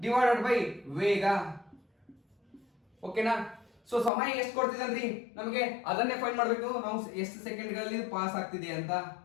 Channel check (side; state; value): right; drops out; at 4.1 s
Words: ಡಿವೈಡೆಡ್ ಬೈ ವೇಗ. ಓಕೆನಾ? ಸೊ ಸಮಯ ಎಷ್ಟು ಕೊಡ್ತಿದ್ರಿ ನಮಗೆ ಅದನ್ನೇ ಫೈಂಡ್ ಮಾಡಬೇಕು ನಾವು, ಎಷ್ಟು ಸೆಕೆಂಡ್ಗಳಲ್ಲಿ ಪಾಸ್ ಆಗ್ತಿದೆ ಅಂತ.